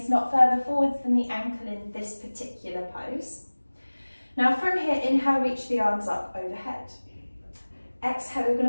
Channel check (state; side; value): inverted; both; correlation -1.00